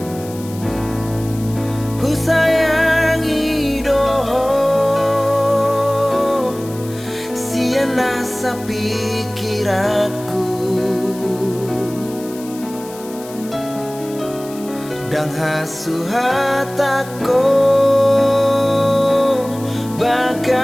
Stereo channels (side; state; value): left; noise; hiss, 18 dB below the sound